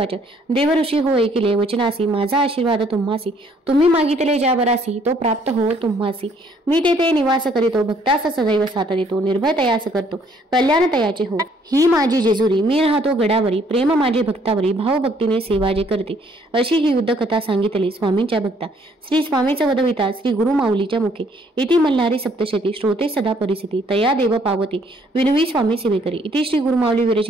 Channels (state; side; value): normal; both; correlation 0.64